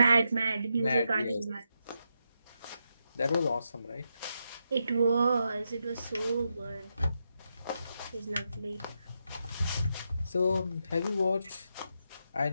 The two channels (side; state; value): both; inverted; correlation -0.84